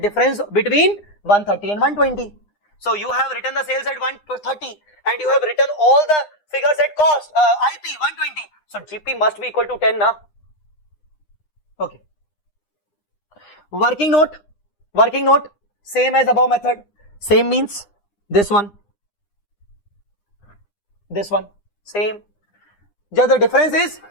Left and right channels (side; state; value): right; late; 9.8 ms